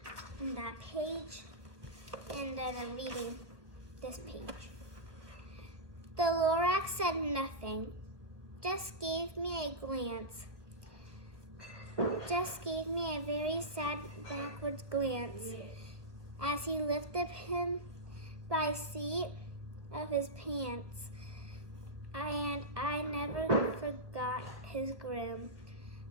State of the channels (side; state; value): left; late; 1.2 ms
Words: That page, and then I'm reading this page. The Lorax said nothing, just gave me a glance. Just gave me a very sad backwards glance as he lifted him by seat of his pants. And I never forgot his grim